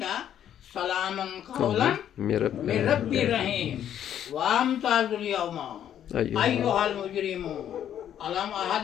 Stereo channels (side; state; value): right; quieter; 10.2 dB